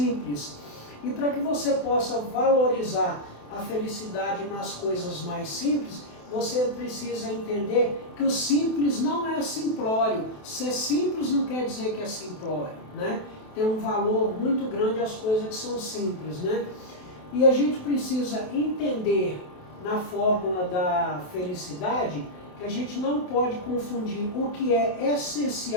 E para que você possa valorizar a felicidade nas coisas mais simples, você precisa entender que o simples não é simplório. Ser simples não quer dizer que é simplório, né? Tem um valor muito grande as coisas que são simples, né? E a gente precisa entender na fórmula da felicidade que a gente não pode confundir o que é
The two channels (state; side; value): late; right; 28 ms